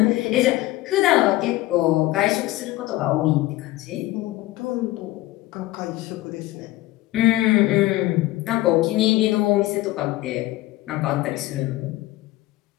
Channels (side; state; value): right; quieter; 17.4 dB